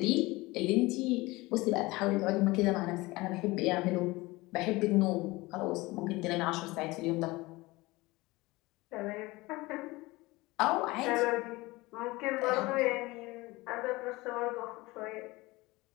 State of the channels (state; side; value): quieter; right; 21.4 dB